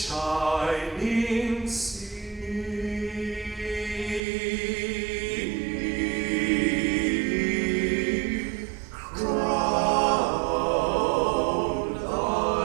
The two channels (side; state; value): left; drops out; at 4.2 s